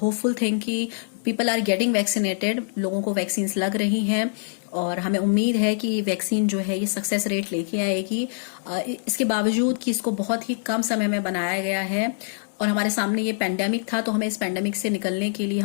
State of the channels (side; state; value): right; silent; 62 dB below the other